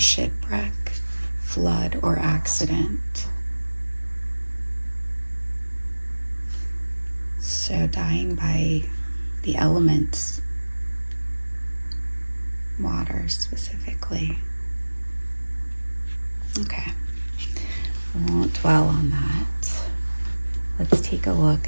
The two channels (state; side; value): inverted; both; correlation -1.00